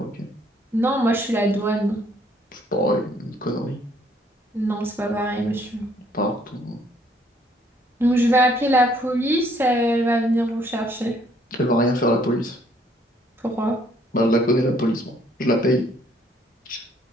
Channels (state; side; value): normal; both; correlation 0.65